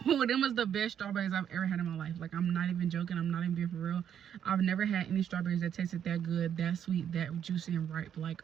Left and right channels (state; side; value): quieter; left; 9.1 dB